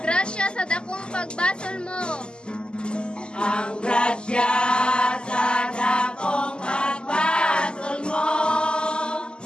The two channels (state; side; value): late; right; 0.048 ms